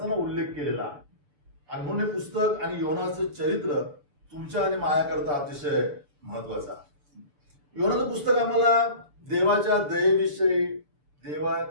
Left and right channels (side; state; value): left; late; 6.8 ms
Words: उल्लेख केलेला आहे. आणि म्हणून हे पुस्तक आणि योनाचं चरित्र तुमच्या आणि माझ्याकरता अतिशय महत्वाचं आहे. योनाचं पुस्तक आम्हाला देवाच्या दयेविषयी,